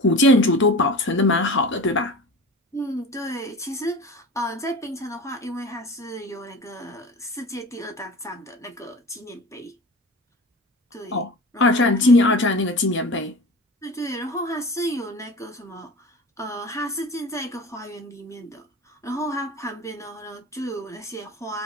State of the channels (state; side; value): normal; both; correlation 0.35